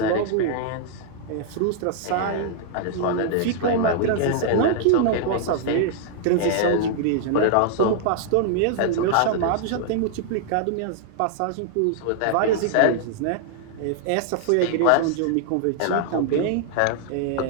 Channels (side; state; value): both; different; correlation -0.01